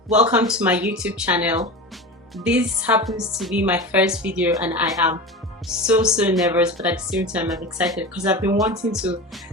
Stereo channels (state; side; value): normal; both; correlation 0.28